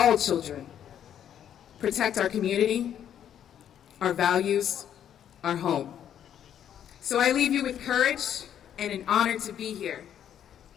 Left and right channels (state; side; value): quieter; right; 9.8 dB